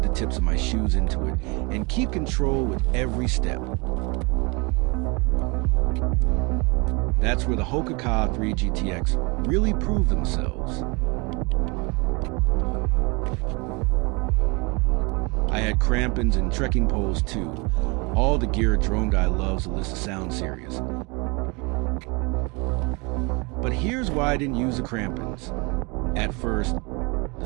the tips of my shoes into it and keep control with every step. That's where the Hoka 3 GTX really proved themselves. I had crampons and trekking poles too, all the gear a drone guy loves to list to sound serious. But here's why I didn't use the crampons. At first, the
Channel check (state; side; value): quieter; left; 28.9 dB